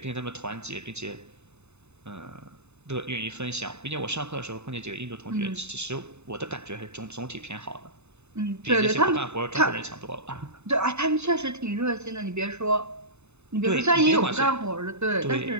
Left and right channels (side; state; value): left; late; 0.81 ms